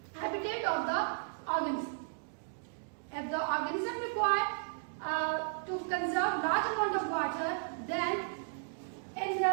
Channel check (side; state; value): left; silent; digital silence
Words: habitat of the organism. If the organism require to conserve large amount of water, then in